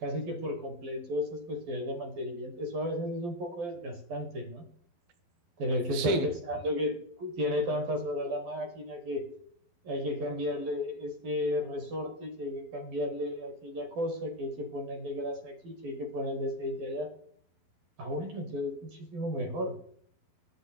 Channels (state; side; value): late; left; 12 ms